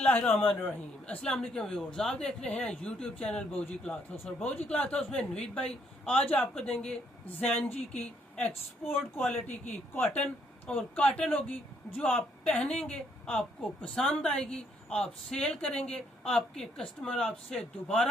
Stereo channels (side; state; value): both; normal; correlation 0.70